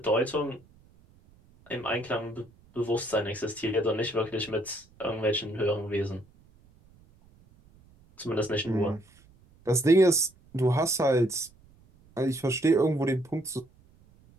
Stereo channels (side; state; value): right; noise; rumble, 29 dB below the sound